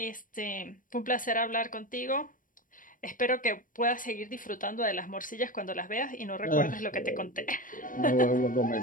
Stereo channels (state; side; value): late; right; 0.39 ms